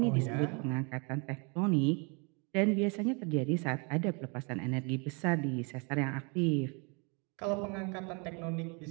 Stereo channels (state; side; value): quieter; left; 33.2 dB